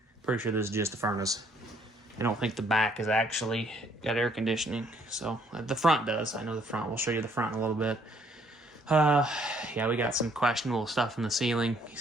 Pretty sure this is just the furnace. I don't think the back is actually got air conditioning. So the front does. I know the front. We'll show you the front in a little bit. Yeah, we got some questionable stuff in the ceiling.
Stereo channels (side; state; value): both; normal; correlation 0.65